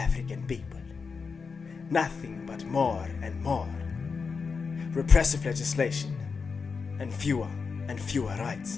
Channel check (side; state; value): right; quieter; 5.2 dB